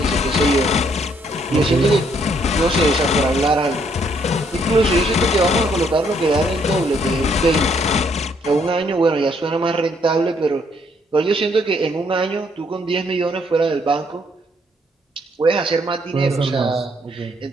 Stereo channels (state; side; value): normal; both; correlation 0.69